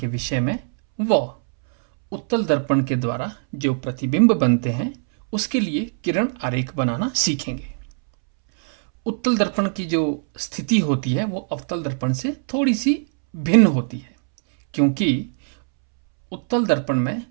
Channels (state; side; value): silent; left; 65 dB below the other